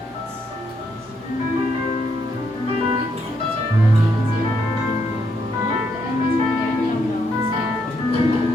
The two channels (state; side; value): normal; both; correlation 0.76